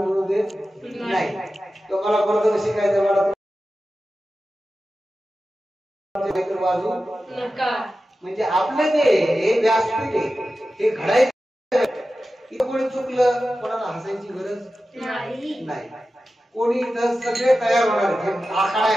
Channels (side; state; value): both; normal; correlation 0.93